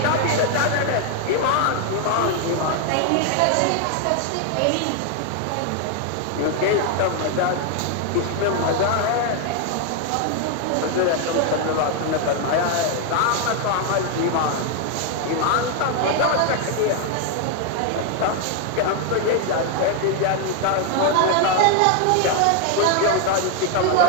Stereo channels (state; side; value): different; both; correlation 0.01